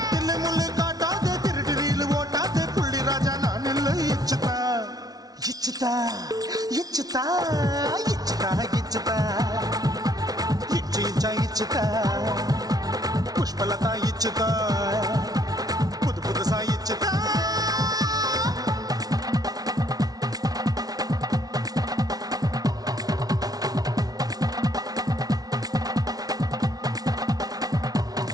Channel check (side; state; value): left; late; 0.18 ms